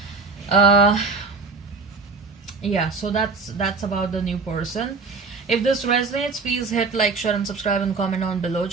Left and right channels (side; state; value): left; quieter; 4.4 dB